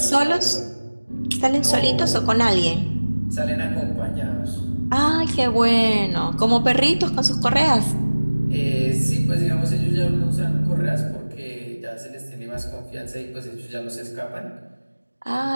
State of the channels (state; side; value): inverted; both; correlation -1.00